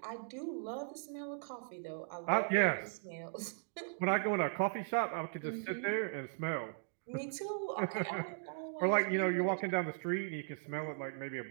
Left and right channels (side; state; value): left; silent; digital silence